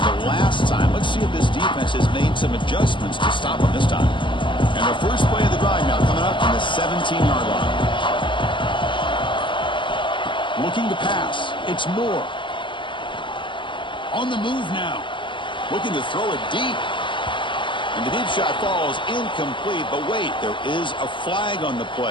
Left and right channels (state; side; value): late; right; 0.24 ms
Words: the last time. Let's see if this defense has made some adjustments to stop them this time. And the first play of the drive now coming up from the 17-yard line. Looking to pass. It's Moore. On the move now. Looking to throw it deep. And the deep shot falls incomplete. But wait, there is a flag on the